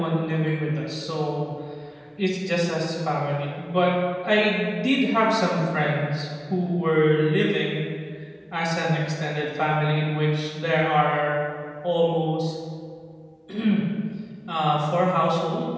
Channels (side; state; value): both; identical; correlation 1.00